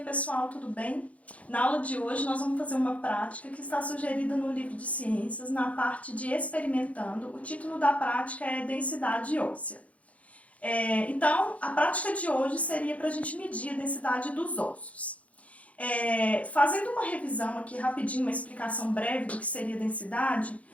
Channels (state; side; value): late; right; 0.066 ms